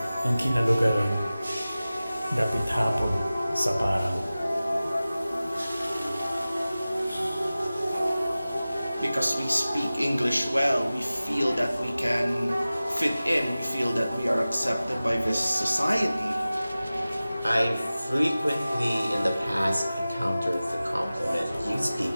ang kinalugaran. Dapit hapon sa parang. Because we speak English well, we feel that we can fit in, we feel that we are accepted by this society. I frequently in the past encountered the compliment, you speak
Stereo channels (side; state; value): both; inverted; correlation -0.97